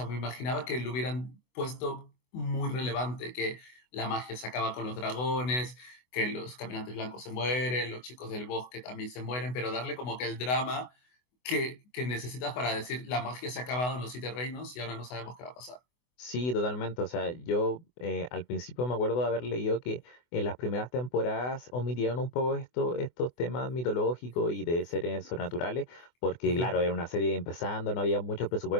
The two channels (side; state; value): right; late; 24 ms